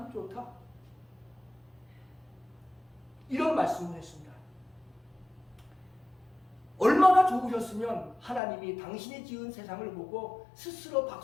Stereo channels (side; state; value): right; drops out; at 8.4 s